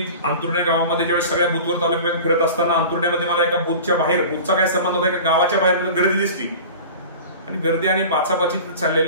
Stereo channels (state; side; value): inverted; both; correlation -0.37